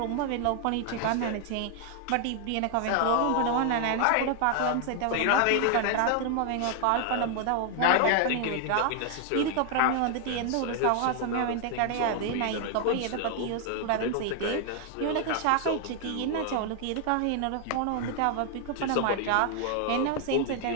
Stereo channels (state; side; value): different; both; correlation 0.00